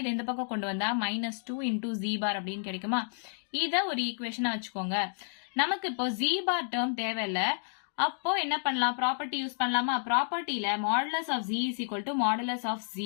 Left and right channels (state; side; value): silent; right; digital silence